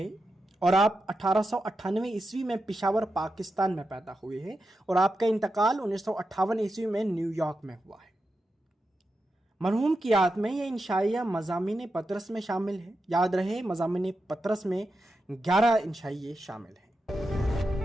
और आप 1898 ईस्वी में पिशावर पाकिस्तान में पैदा हुए हैं और आपका इंतकाल 1958 ईस्वी में न्यूयॉर्क में हुआ है। मरहूम की याद में यह इंशाइया मज़ामीन पतरस में शामिल है। याद रहे, मज़ामीन पतरस में 11 इंशाइये शामिल हैं।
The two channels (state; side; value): normal; both; correlation 0.89